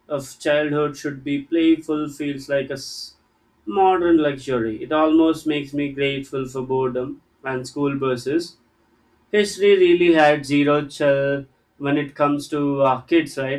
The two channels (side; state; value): both; identical; correlation 1.00